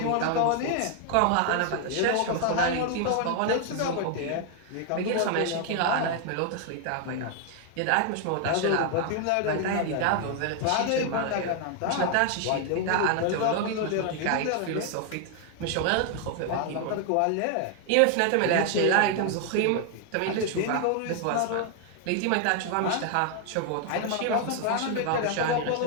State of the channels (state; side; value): different; both; correlation 0.00